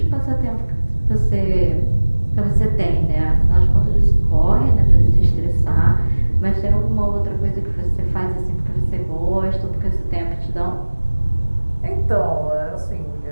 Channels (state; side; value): inverted; both; correlation -1.00